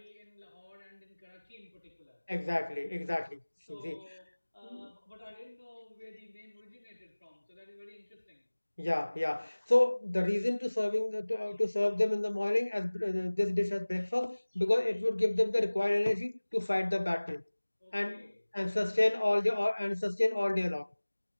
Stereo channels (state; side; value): inverted; both; correlation -1.00